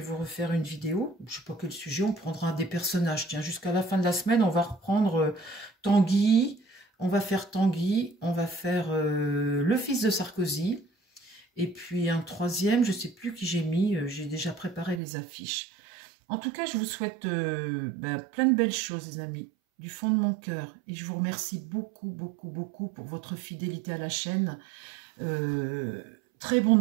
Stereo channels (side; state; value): left; drops out; at 15.0 s